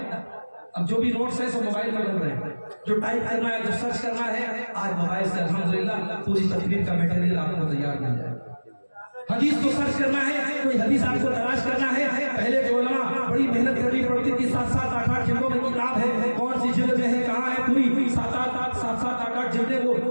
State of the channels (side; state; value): both; inverted; correlation -1.00